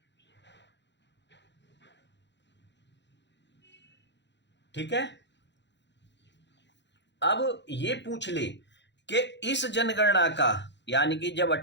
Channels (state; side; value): late; right; 0.52 ms